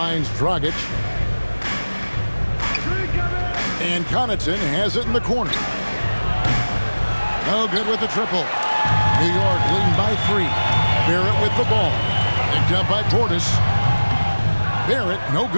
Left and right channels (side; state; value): both; inverted; correlation -1.00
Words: Dragic. And Connaughton has it in the corner. No good with the triple. New York leading by 3. Barrett with the ball. Picked up by Portis. Barrett, no